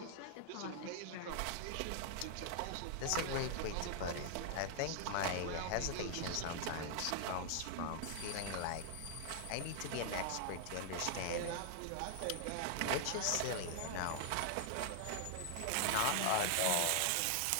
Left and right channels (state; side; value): different; both; correlation 0.00